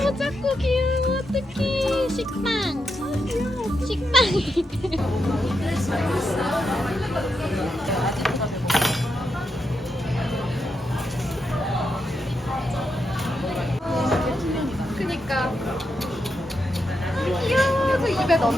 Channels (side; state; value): both; normal; correlation 0.84